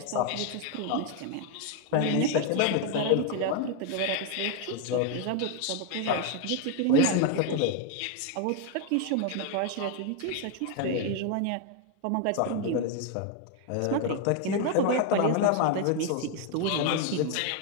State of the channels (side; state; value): both; different; correlation 0.01